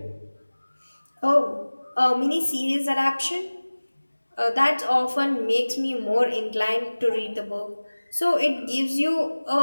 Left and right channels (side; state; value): both; inverted; correlation -1.00